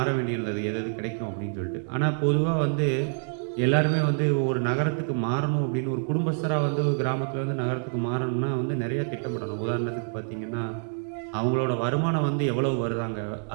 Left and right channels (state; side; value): silent; left; 60 dB below the other